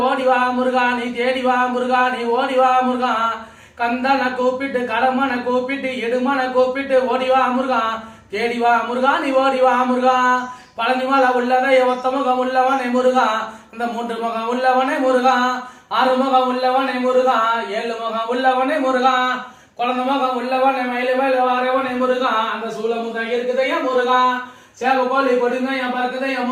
ஓடி வா முருகா நீ தேடி வா முருகா நீ ஓடி வா முருகா கந்தனை கூப்பிட்டு கடமனை கூப்பிட்டு எடுமனை கூப்பிட்டு ஓடி வா முருகா தேடி வா முருகா நீ ஓடி வா முருகா பழனி மலை உள்ளதை ஒத்த முகம் உள்ளவனே முருகா இந்த 3 முகம் உள்ளவனே முருகா 6 முகம் உள்ளவனே முருகா 7 முகம் உள்ளவனே முருகா குழந்தை முகம் உள்ளவனே மயில மேல வாரவனே முருகா அந்த சூளமுகம் இருக்குதையா முருகா சேவ கோழி கொடுங்க என் பறக்குதையா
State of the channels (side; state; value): both; identical; correlation 1.00